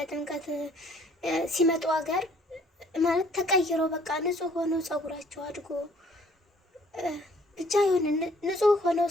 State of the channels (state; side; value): normal; both; correlation 0.60